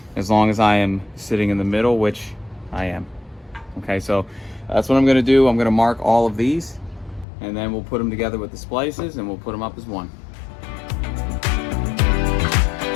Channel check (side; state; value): right; drops out; at 7.2 s